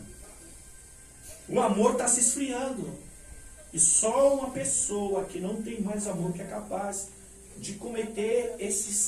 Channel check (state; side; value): identical; both; correlation 1.00